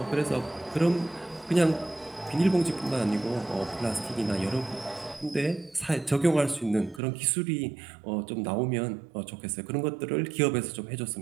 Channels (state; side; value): drops out; left; at 7.0 s